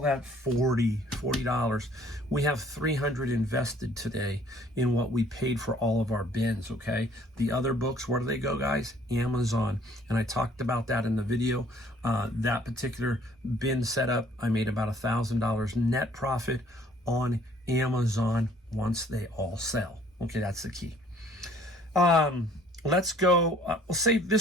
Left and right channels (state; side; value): normal; both; correlation 0.58